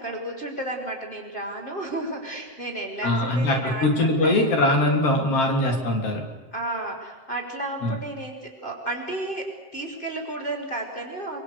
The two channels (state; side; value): late; right; 7.6 ms